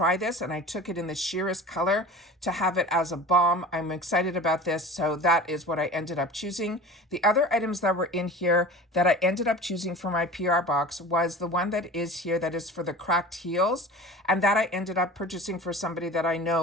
this. And I took it in the sheerest color to have it as a balm. I'm excited about this. So that is what I ended up choosing. The other items that were in here that I ended up choosing for my PR box was the one that is here that is for the cracked heels. And that I ended up purchasing for somebody that I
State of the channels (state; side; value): normal; both; correlation 0.37